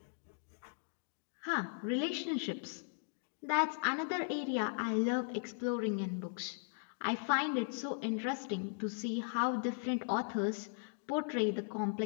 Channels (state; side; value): silent; right; digital silence